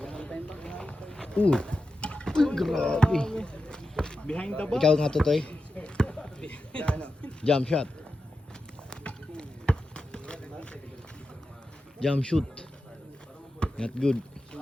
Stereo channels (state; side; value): normal; both; correlation 0.91